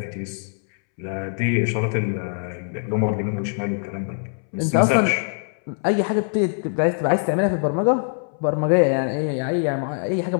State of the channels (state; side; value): silent; right; 64 dB below the other